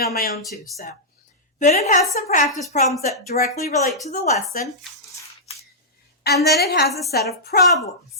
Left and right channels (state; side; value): normal; both; correlation -0.12